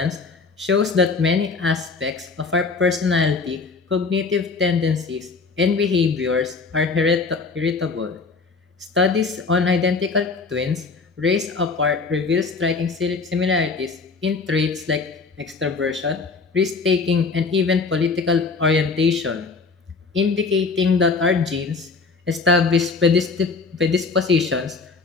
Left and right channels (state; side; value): quieter; right; 4.4 dB